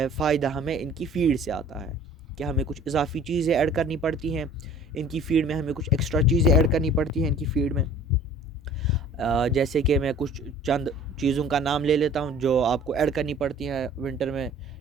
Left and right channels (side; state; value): both; normal; correlation 0.49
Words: फ़ायदा हमें इनकी फ़ीड से आता है कि हमें कुछ इजाफ़ी चीज़ें ऐड करनी पड़ती हैं इनकी फ़ीड में, हमें कुछ एक्स्ट्रा चीज़ें ऐड करनी पड़ती हैं इनकी फ़ीड में। जैसे कि मैं कुछ चंद चीज़ों का नाम ले लेता हूँ जो आपको ऐड करनी पड़ती है विंटर में